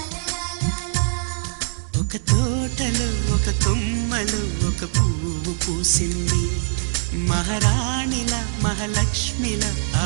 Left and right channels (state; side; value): silent; left; 64 dB below the other